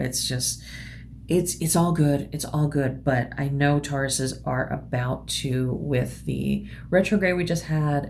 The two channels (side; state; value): both; identical; correlation 1.00